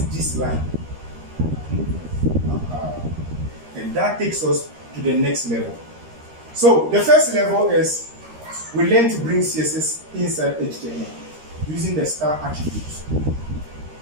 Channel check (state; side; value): late; left; 13 ms